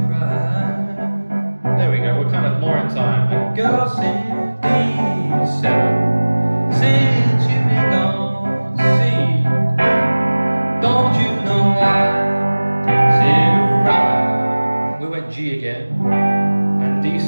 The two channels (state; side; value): inverted; both; correlation -1.00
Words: cry. There we go, we're kind of more in time. And girl, sing D7. Since you've been gone, see, don't you know I sit around. We went G again, and